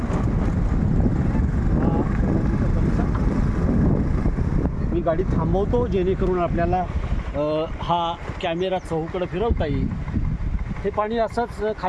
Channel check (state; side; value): identical; both; correlation 1.00